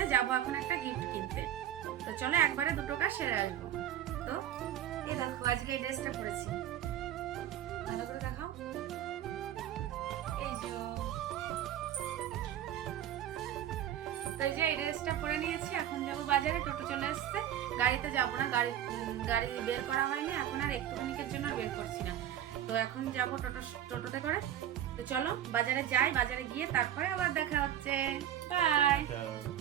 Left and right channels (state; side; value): quieter; left; 11.3 dB